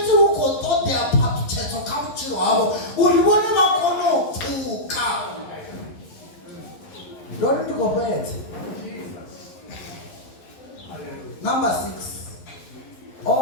ukotodea papyedzo kamuchiro havo uri vone vakonopfuka. Ndori ndikopedze. Number 6.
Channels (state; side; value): late; right; 11 ms